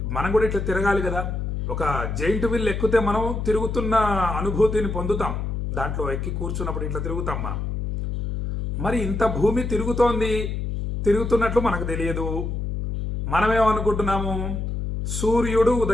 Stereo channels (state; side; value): noise; left; hum, 3 dB below the sound